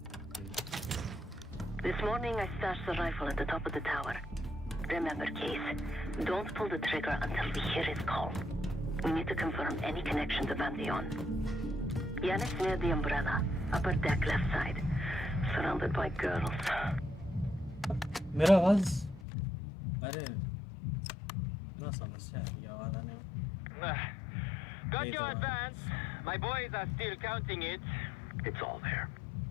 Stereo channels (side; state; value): right; drops out; at 19.2 s